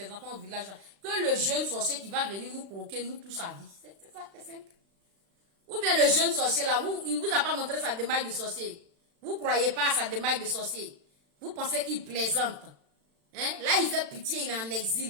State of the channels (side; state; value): left; late; 36 ms